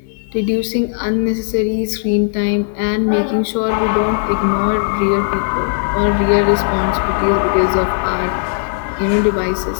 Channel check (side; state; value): right; silent; 68 dB below the other